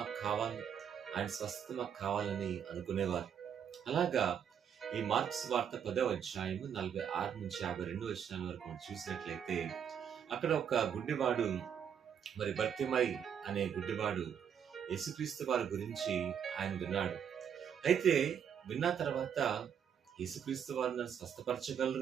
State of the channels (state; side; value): quieter; left; 8.2 dB